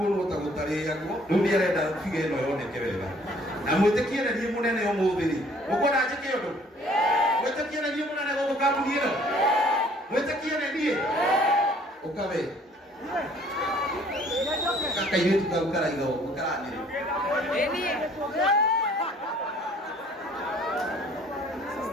ta gutari yako riu ni arenda fige ino yoneke wega na mwitikie na ni munene omuthiri ukona njike undu mwitikie na ni munene go kabuni ino mwitikie na ni ukawe kaka yetu tukara igo ukarani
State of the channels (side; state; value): both; normal; correlation 0.58